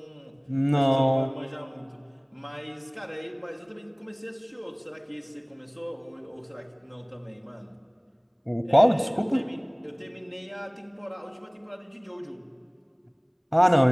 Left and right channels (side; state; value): both; identical; correlation 1.00